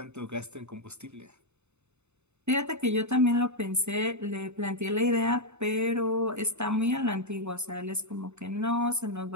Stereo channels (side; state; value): left; late; 0.82 ms